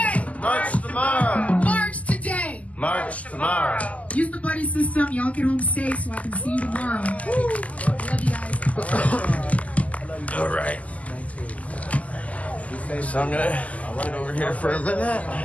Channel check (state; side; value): late; right; 0.072 ms